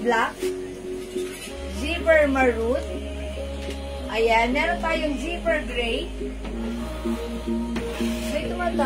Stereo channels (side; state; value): both; identical; correlation 1.00